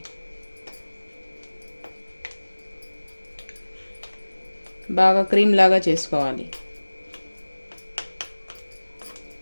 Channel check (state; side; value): inverted; both; correlation -1.00